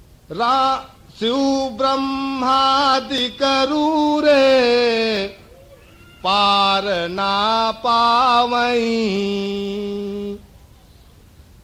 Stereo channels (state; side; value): identical; both; correlation 1.00